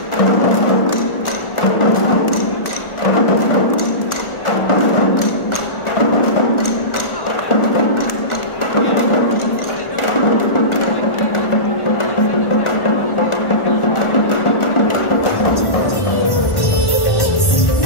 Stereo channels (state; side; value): late; right; 1.4 ms